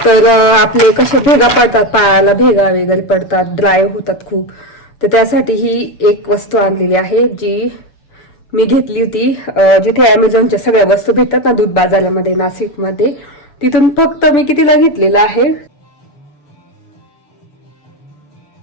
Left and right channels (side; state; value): right; late; 6.9 ms